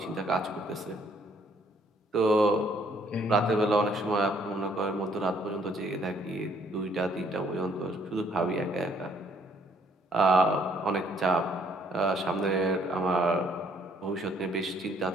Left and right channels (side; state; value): both; normal; correlation 0.65